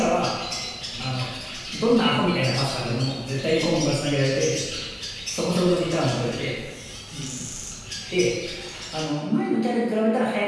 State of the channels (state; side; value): identical; both; correlation 1.00